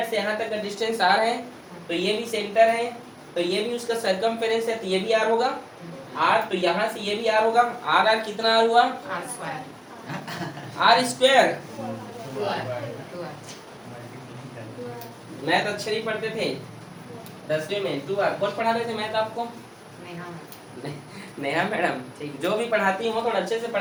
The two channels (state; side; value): identical; both; correlation 1.00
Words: से यहाँ तक का डिस्टेंस r है, तो ये भी सेंटर है, तो ये भी उसका सरकमफेरेंस है, तो ये भी r होगा, r, तो यहाँ से ये भी r होगा, r कितना r हुआ, r स्क्वायर, मैथ अच्छे नहीं पढ़ते थे 10वीं में, 2r कौन पढ़ा रहे थे मैथ आपको, नेहा मैडम, ठीक, जो भी पढ़ाती हो थोड़ा अच्छे से